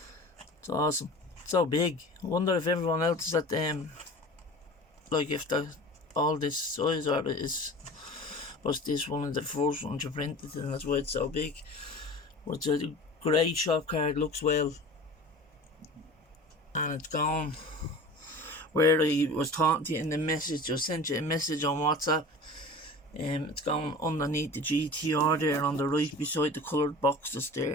It's awesome. It's so big. I wonder if everyone else is at like if they're all this size, or was this one of the first ones you printed and that's why it's so big. But it's a great shop card, looks well, and it's gone where I was talking to you in the message. I sent you a message on WhatsApp. It's gone underneath the GTR there on the right beside the coloured boxes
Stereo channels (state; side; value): normal; both; correlation 0.38